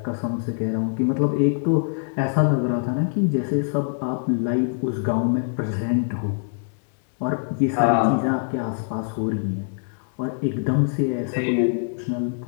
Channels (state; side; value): silent; right; digital silence